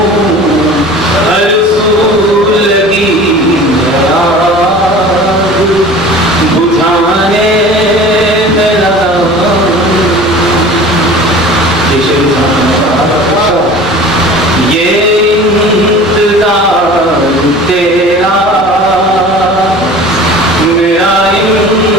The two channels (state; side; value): normal; both; correlation 0.41